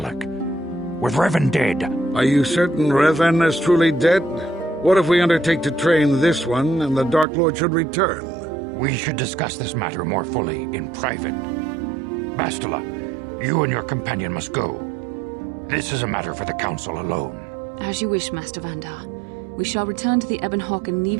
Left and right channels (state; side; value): drops out; left; at 7.2 s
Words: With Revan dead... Are you certain Revan is truly dead? What if we undertake to train this one and the Dark Lord should return? We should discuss this matter more fully in private. Bastila, you and your companion must go. This is a matter for the Council alone. As you wish, Master Vandar. We shall return to the Ebon Hawk and